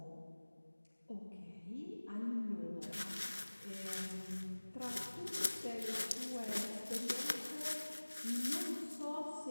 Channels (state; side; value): inverted; both; correlation -1.00